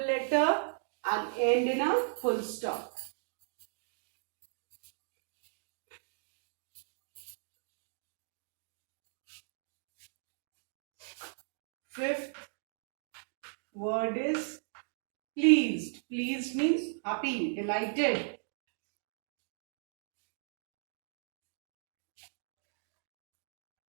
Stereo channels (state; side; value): silent; left; digital silence